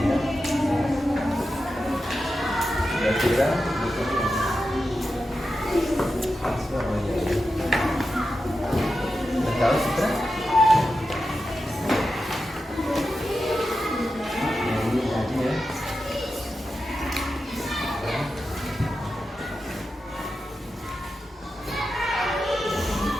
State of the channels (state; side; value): normal; both; correlation 0.90